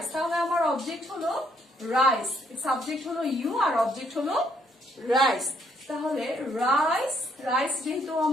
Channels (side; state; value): both; normal; correlation 0.70